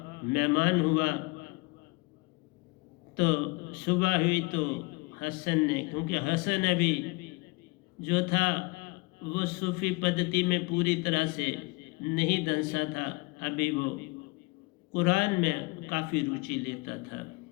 मेहमान हुआ, तो सुबह हुई तो हसन ने, क्योंकि हसन अभी जो था वो सूफी पद्धति में पूरी तरह से नहीं दंसा था, अभी वो कुरान में काफ़ी रुचि लेता था।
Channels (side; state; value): right; quieter; 26.2 dB